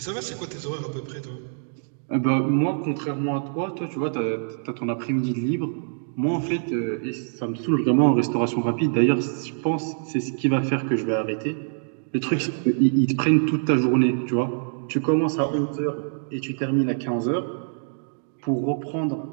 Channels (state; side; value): silent; left; digital silence